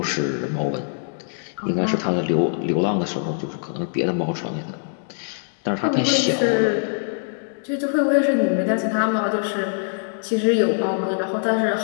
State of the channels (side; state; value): right; silent; digital silence